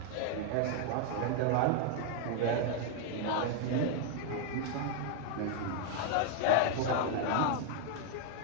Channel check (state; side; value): different; both; correlation 0.00